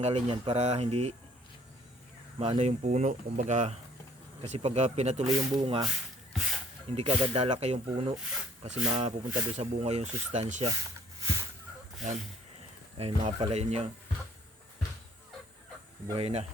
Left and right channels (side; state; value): both; normal; correlation 0.60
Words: yan para hindi maano yung puno. Kumbaga, kasi pag pinatuloy yung bunga, hindi ka agad lalaki yung puno kasi mapupunta doon sa bunga yung sustansya. Yan. Ayun mga palayan niya. Buhay na.